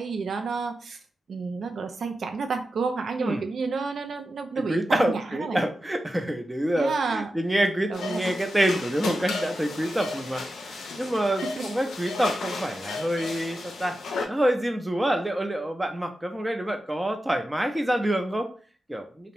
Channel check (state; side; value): normal; both; correlation 0.91